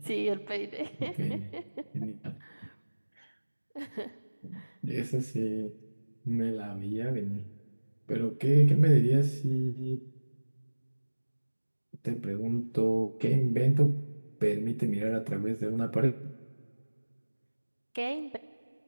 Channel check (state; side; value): inverted; both; correlation -1.00